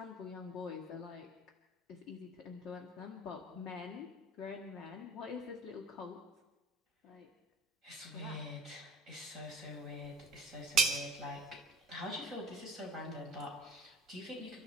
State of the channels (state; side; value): normal; both; correlation 0.46